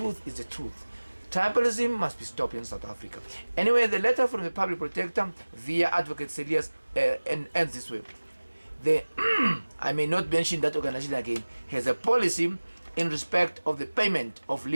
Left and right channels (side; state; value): both; inverted; correlation -1.00